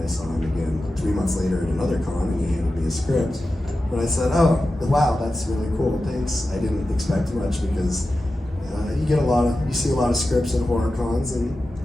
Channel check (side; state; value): both; normal; correlation 0.93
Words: saw him again 3 months later at another con, and he handed me a script. And I said, oh, wow, that's really cool, thanks. I didn't expect much because you see a lot of scripts at horror cons, and